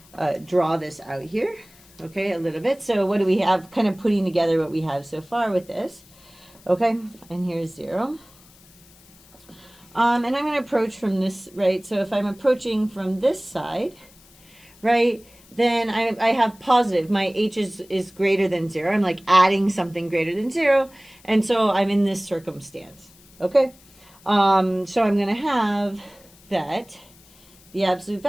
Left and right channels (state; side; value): noise; left; hiss, 26 dB below the sound